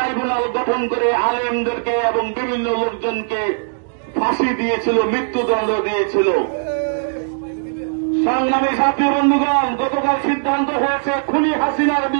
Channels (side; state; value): left; silent; digital silence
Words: গঠন করে আলেমদেরকে এবং বিভিন্ন লোকজনকে ফাঁসি দিয়েছিল, মৃত্যুদণ্ড দিয়েছিল। সংগ্রামী সাথী বন্ধুগণ, গতকাল সিদ্ধান্ত হয়েছে খুনি হাসিনার